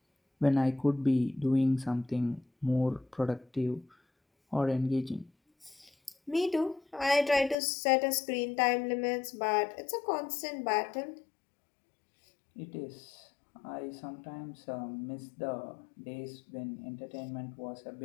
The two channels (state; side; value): drops out; right; at 7.6 s